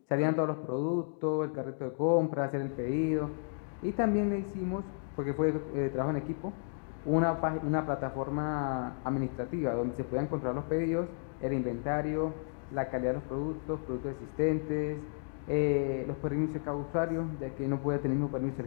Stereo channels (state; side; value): silent; right; digital silence